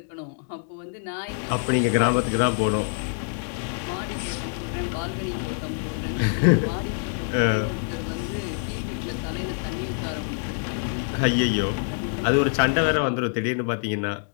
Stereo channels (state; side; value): silent; right; digital silence